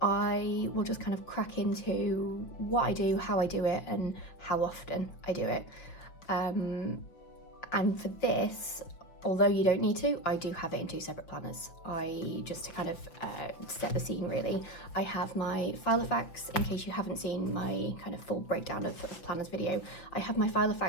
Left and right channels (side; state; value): right; late; 6.1 ms